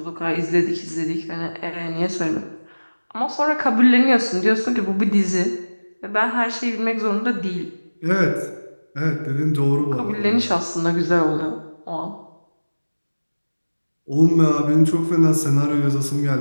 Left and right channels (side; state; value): both; inverted; correlation -1.00